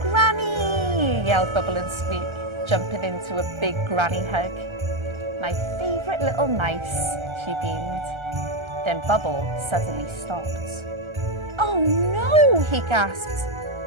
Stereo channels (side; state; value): left; late; 1.3 ms